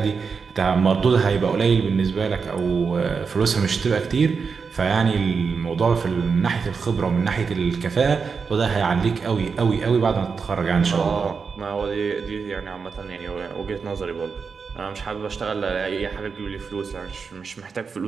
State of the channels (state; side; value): quieter; left; 5.4 dB